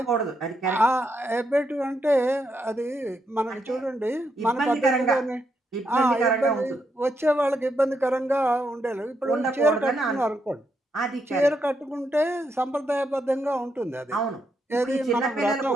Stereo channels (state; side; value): normal; both; correlation 0.80